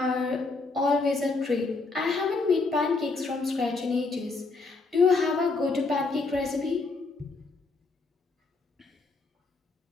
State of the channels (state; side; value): quieter; right; 3.9 dB